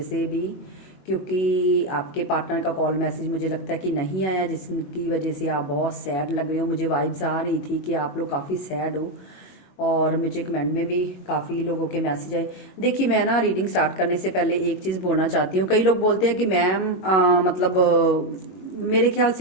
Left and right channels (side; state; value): right; late; 21 ms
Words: से भी, क्योंकि आपके पार्टनर का कॉल मैसेज मुझे लगता है कि नहीं आया, जिसकी वजह से आप बहुत सैड लग रहे हो। मुझे वाइब्स आ रही थी कि आप लोग काफ़ी सैड हो और मुझे कमेंट में भी काफ़ी लोगों के मैसेज आए। देखिए, मैं ना रीडिंग स्टार्ट करने से पहले एक चीज़ बोलना चाहती हूँ। कई लोग बोलते हैं कि मैम मतलब मेरे ख्याल